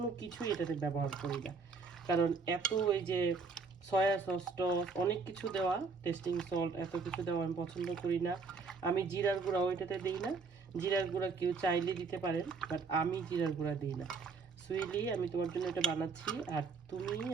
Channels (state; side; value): quieter; left; 4.7 dB